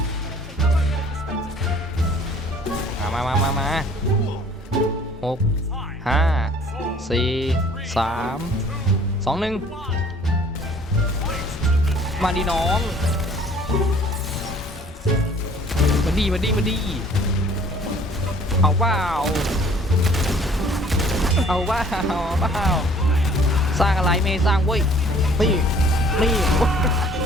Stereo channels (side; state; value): both; normal; correlation 0.55